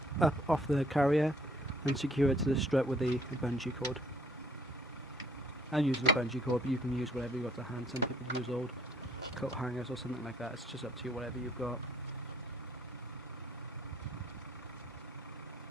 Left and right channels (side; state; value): both; normal; correlation 0.62